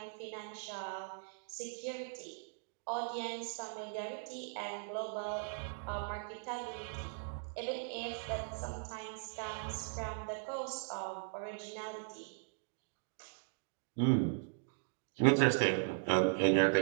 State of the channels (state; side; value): silent; left; digital silence